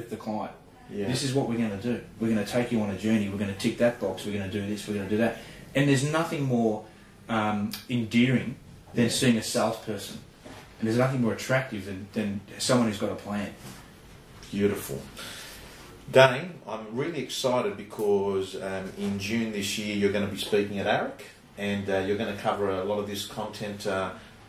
the client. Yeah. This is what we're going to do. We're going to take you on a journey. We're going to tick that box. We're going to do this. We're going to do that. And there's nothing more endearing than seeing a salesperson. And there's nothing more attractive than someone who's got a plan. Beautiful. Dane, I'm really excited because in June this year you're going to be speaking at ARIC, and you're going to cover a lot of this content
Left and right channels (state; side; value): identical; both; correlation 1.00